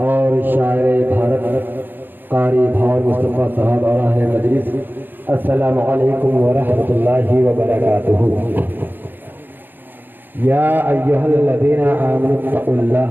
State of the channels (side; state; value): left; late; 0.093 ms